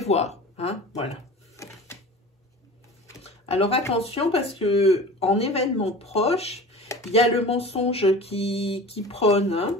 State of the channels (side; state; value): both; normal; correlation 0.37